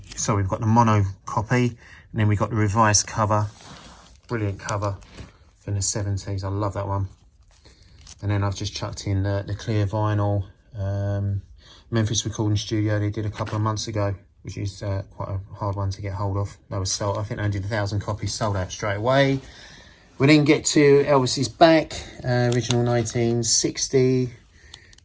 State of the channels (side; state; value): both; identical; correlation 1.00